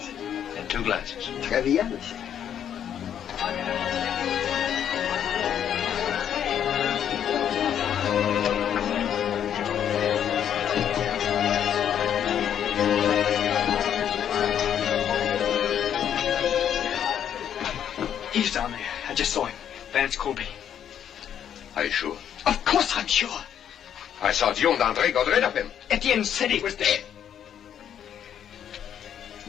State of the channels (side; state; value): right; quieter; 9.4 dB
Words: And 2 glasses. Très bien, monsieur. He's down there. I just saw him. Vance Colby. Are you sure? Of course I'm sure. I thought you and André got rid of him. Etienne said he was dead.